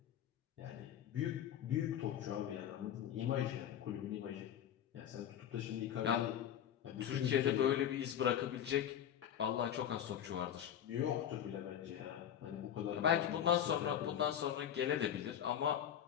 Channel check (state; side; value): quieter; right; 9.9 dB